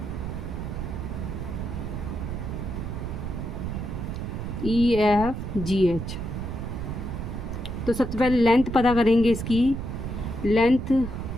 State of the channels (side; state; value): right; noise; rumble, 5 dB below the sound